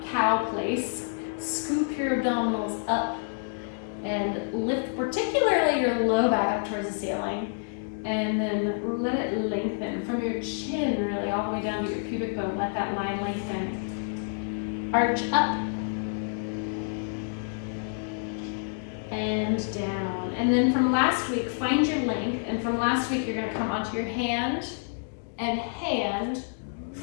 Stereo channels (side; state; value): right; silent; digital silence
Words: cow place. Scoop your abdominals up and lift particularly your low back up towards the ceiling. And then let it lengthen from your chin really all the way down to your pubic bone. Let that line lengthen. Arch up and down. And then from last week, find your length. And from last week, you're going to come onto your hand and hand,